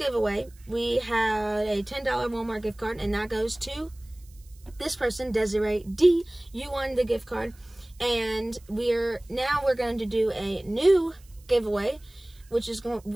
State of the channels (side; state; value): right; noise; hiss, 28 dB below the sound